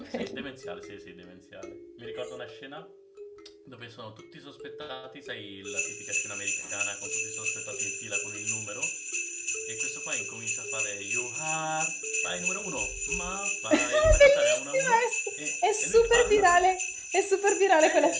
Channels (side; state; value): both; identical; correlation 1.00